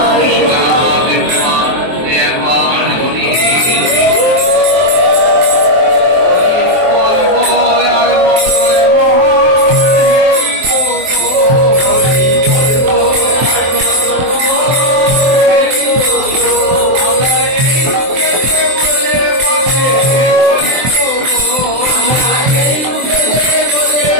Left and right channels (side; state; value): left; late; 23 ms